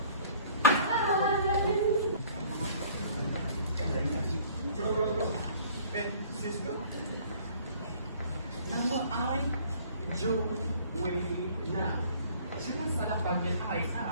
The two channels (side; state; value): both; inverted; correlation -0.54